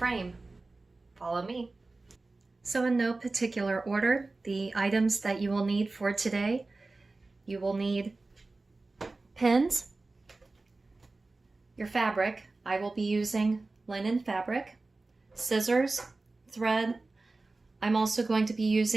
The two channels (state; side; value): quieter; left; 3.4 dB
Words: Follow me. So in no particular order, the items that you will need for today, you will need pins, your fabric. I will be using linen fabric, scissors, thread. I'm also going to be